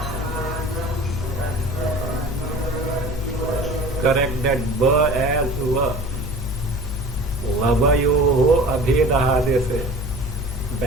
Correct that ba as va. Lavayoho abhedaha, they say.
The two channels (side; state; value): both; normal; correlation 0.41